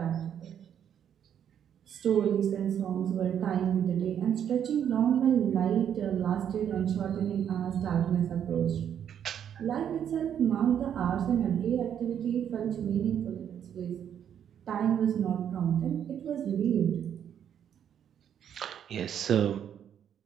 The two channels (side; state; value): left; quieter; 9.1 dB